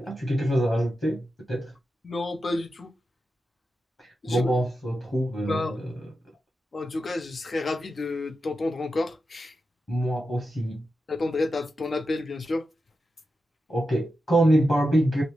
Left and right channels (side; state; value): both; normal; correlation 0.90